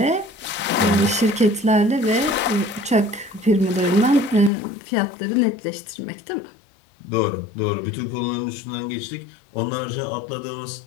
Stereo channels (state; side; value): drops out; right; at 4.5 s